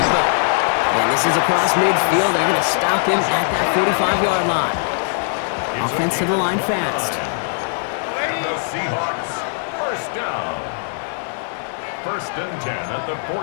And this is across midfield. They're going to stop him at that 45-yard line. Offense to the line fast. And the Seahawks first down. First and 10 at the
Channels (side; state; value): right; silent; 57 dB below the other